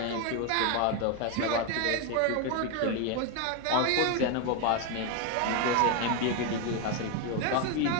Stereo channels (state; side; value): different; both; correlation 0.01